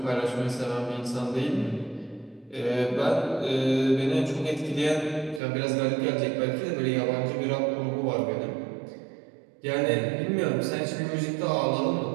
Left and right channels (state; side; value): drops out; left; at 5.4 s